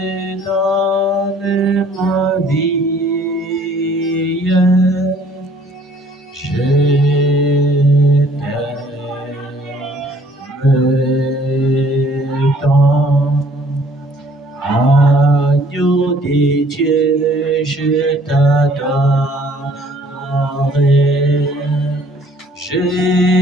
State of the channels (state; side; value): normal; both; correlation 0.58